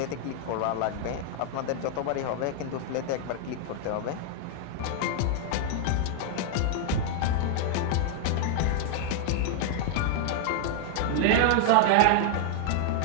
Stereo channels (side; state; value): both; different; correlation 0.00